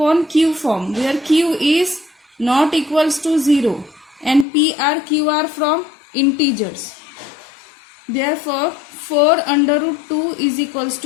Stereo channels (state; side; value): drops out; right; at 4.5 s